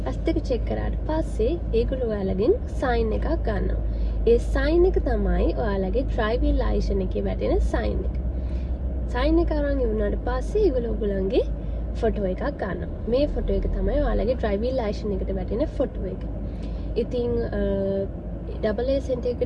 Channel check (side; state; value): both; identical; correlation 1.00